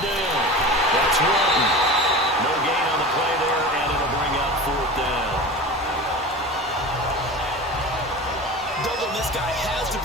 that's Walton. No gain on the play there, and it'll bring up 4th down. Doubling this guy has to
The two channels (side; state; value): both; normal; correlation 0.32